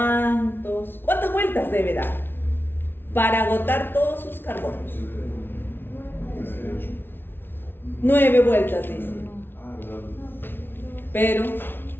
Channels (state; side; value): late; right; 0.10 ms